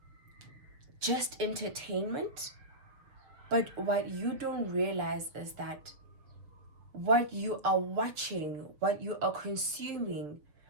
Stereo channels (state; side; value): late; left; 6.7 ms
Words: just entertainment, but what you don't realize is that what you are watching, what you are consuming,